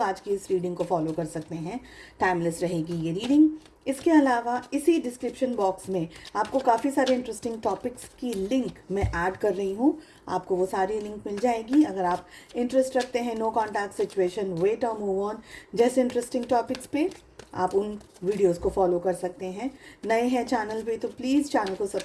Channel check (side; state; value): both; identical; correlation 1.00